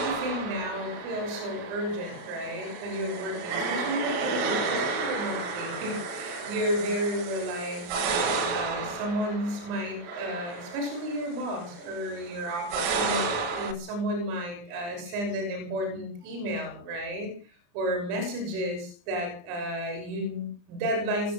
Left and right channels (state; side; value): late; left; 35 ms